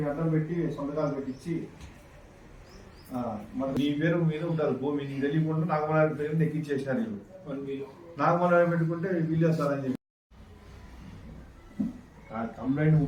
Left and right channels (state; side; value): identical; both; correlation 1.00